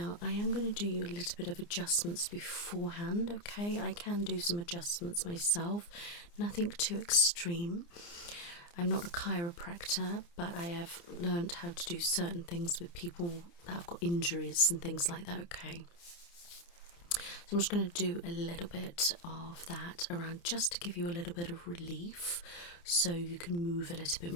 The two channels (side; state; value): right; late; 29 ms